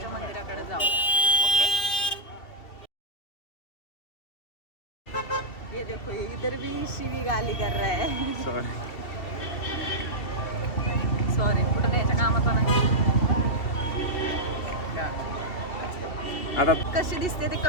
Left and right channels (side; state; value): right; late; 2.7 ms